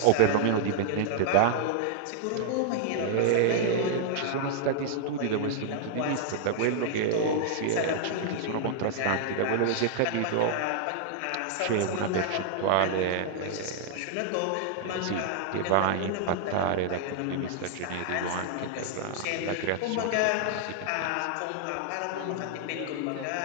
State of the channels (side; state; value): both; different; correlation -0.01